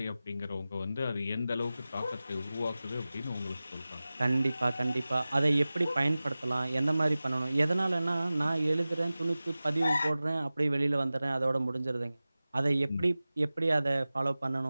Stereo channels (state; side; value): inverted; both; correlation -0.97